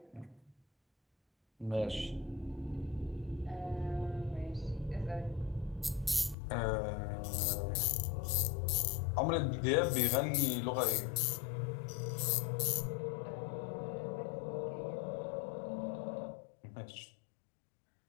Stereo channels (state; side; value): drops out; right; at 6.4 s